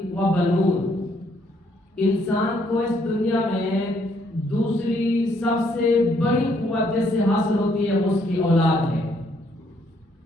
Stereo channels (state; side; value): normal; both; correlation 0.69